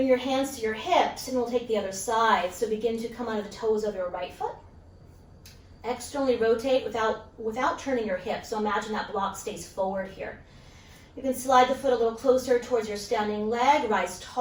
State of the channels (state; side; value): identical; both; correlation 1.00